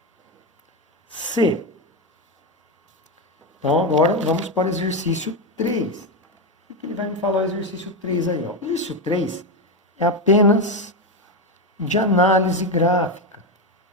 C. Então, agora vamos para o exercício 3. O que ele vai me falar o exercício 3 aí? Ó? O exercício 3 é apenas de análise gráfica.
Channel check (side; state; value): both; normal; correlation 0.10